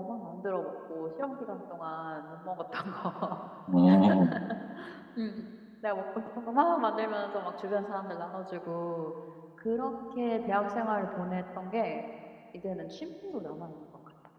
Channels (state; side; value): identical; both; correlation 1.00